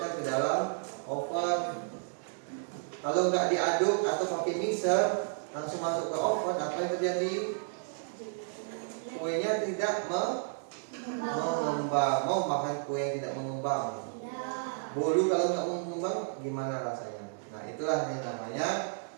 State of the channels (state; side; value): silent; left; digital silence